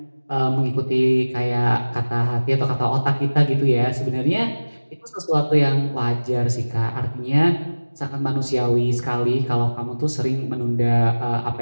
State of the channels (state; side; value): inverted; both; correlation -1.00